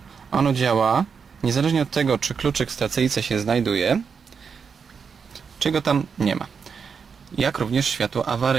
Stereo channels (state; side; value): quieter; left; 6.1 dB